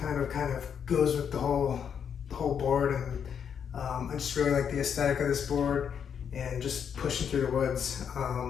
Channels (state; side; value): quieter; right; 7.7 dB